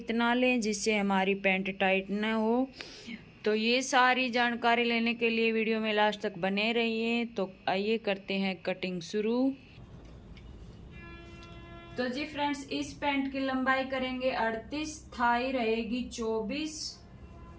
लें जिससे हमारी पैंट टाइट न हो। तो ये सारी जानकारी लेने के लिए वीडियो में लास्ट तक बने रहिए। तो आइए करते हैं कटिंग शुरू। तो जी फ्रेंड्स, इस पैंट की लंबाई करेंगे 38, थाई रहेगी 24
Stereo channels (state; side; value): identical; both; correlation 1.00